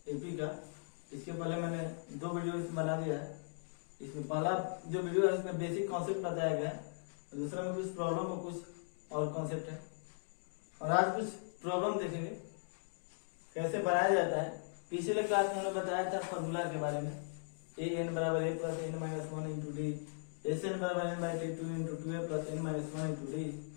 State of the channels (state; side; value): silent; right; digital silence